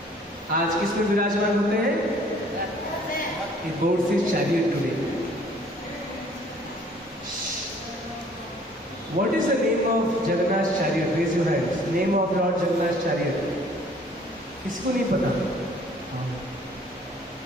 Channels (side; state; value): both; normal; correlation 0.56